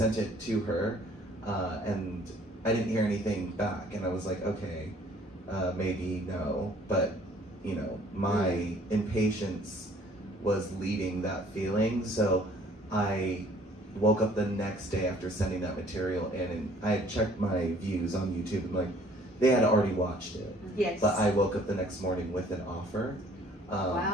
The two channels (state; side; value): normal; both; correlation 0.57